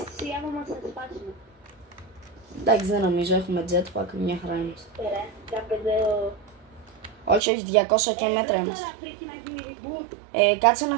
άμα μας θα σπάσουμε. Εντάξει, δεν νομίζω, έχουμε jetpack, μια χαρά είμαστε. Ωραία, κάπου Όχι, 200 και μέτρα είμαστε. Τώρα πρέπει να γίνει reboot. Κάτσε να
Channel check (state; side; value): drops out; left; at 7.4 s